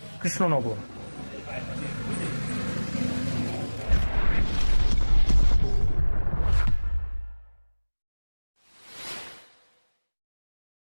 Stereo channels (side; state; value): both; inverted; correlation -1.00